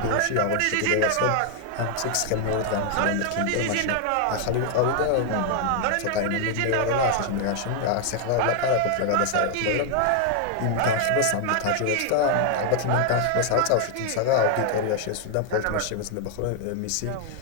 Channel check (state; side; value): different; both; correlation 0.00